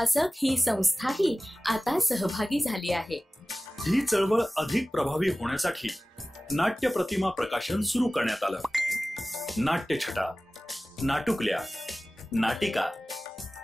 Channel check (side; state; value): both; normal; correlation 0.97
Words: ही संस्थाही आता सहभागी झाली आहे. ही चळवळ अधिक प्रभावी होण्यासाठी नाट्य प्रतिमा प्रकाशन सुरू करण्यात आलं. नाट्यछटा, नाटुकल्या, नाटिका,